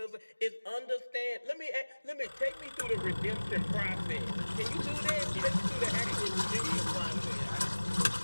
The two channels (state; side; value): inverted; both; correlation -1.00